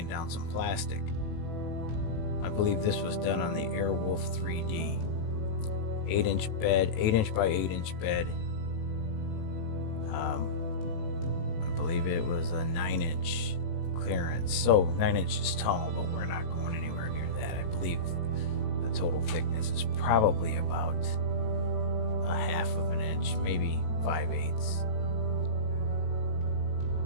down some plastic. I believe this was done on the Airwolf 3D 8-inch bed, 8-inch by 8-inch bed. I believe it was a 9-inch clearance, so 9 inches tall, but we're not going anywhere near that. I believe the total thickness is probably about a half of an inch, maybe 5/8.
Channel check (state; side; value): late; right; 18 ms